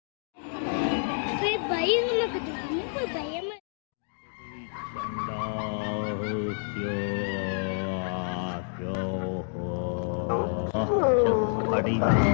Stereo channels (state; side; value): silent; right; digital silence